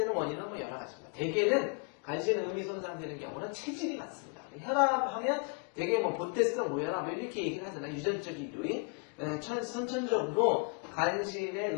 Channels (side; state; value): right; quieter; 34.7 dB